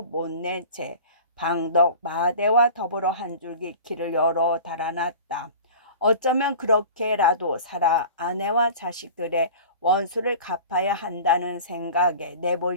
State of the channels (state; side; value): inverted; both; correlation -0.39